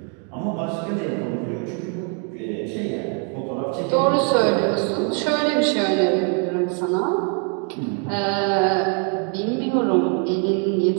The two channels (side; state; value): left; quieter; 37.1 dB